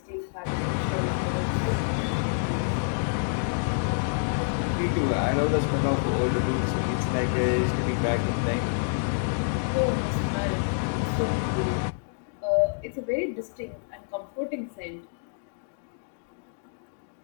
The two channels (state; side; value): silent; right; digital silence